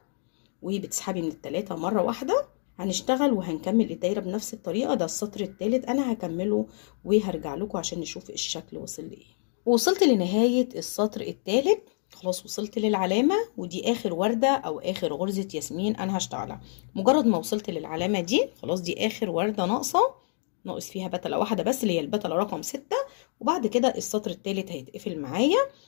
وبتسحبي من ال3 مرة واحدة. هنشتغل وهنكمل الدايرة بنفس الطريقة. ده السطر الثالث انا هكمله وهرجع لكم عشان نشوف الشكل وصل لايه. وصلت لنهاية السطر الثالث، خلاص وصلت للعلامة، ودي اخر وردة او اخر غرزة ياسمين انا هشتغلها. مجرد ما وصلت للعلامة دي خلاص، دي اخر وردة ناقص فيها بتلة واحدة بس اللي هي البتلة رقم 6، وبعد كده السطر الثالث هيتقفل معايا.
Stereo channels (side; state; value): right; silent; digital silence